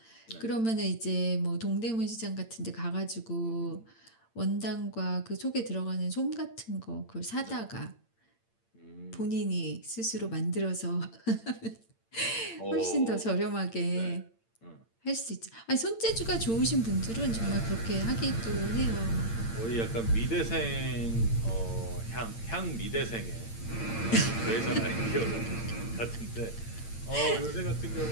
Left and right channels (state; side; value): late; right; 8.8 ms